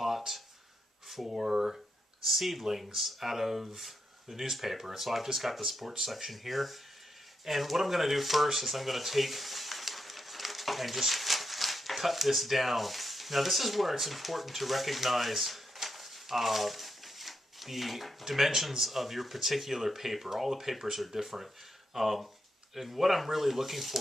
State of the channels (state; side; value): normal; both; correlation 0.83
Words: for seedlings out of the newspaper. And so I've just got the sports section here. And what I'm going to do first is I'm going to take and just cut this down. Now this is where it's important to recognize the dimensions of your particular paper. All the papers are different. And what I'm really looking